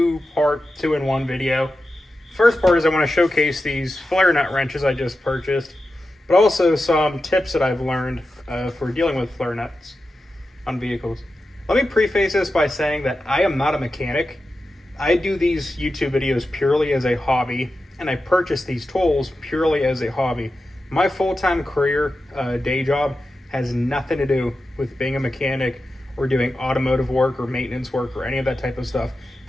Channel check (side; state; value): both; normal; correlation 0.91